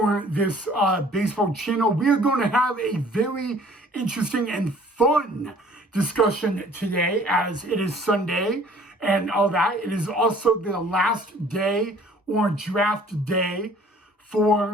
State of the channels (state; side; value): normal; both; correlation 0.53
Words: this baseball channel. We are going to have a very interesting and fun discussion today as it is Sunday and all that. It is also the last day or draft day